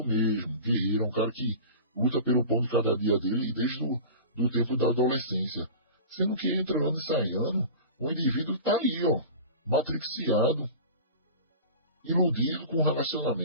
mesmo, guerreiro, um cara que luta pelo pão de cada dia dele desde do tempo da adolescência. Sendo que entre ano e sai ano, o indivíduo está aí, ó, matriciado, iludido com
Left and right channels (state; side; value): inverted; both; correlation -0.35